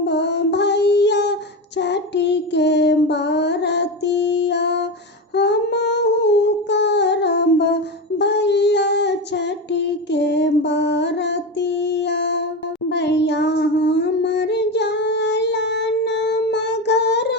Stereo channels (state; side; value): normal; both; correlation 0.19